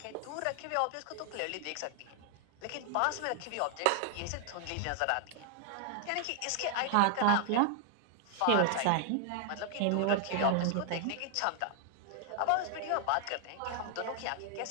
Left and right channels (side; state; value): both; different; correlation 0.00